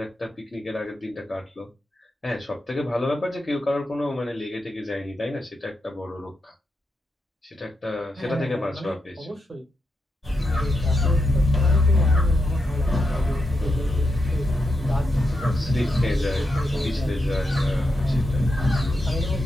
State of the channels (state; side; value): normal; both; correlation 0.86